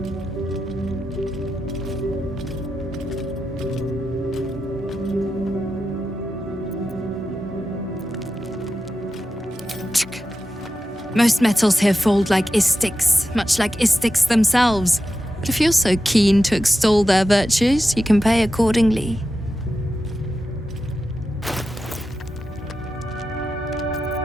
Most metals here fold like Istiks, much like Istiks themselves. But if you're so keen to extol their virtues, you can pay accordingly.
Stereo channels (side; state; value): both; normal; correlation 0.91